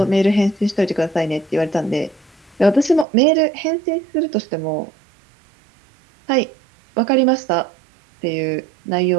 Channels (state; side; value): drops out; left; at 3.1 s